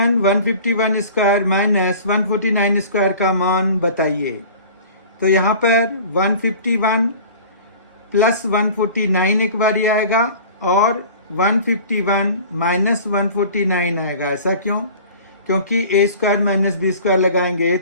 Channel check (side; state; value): both; inverted; correlation -0.43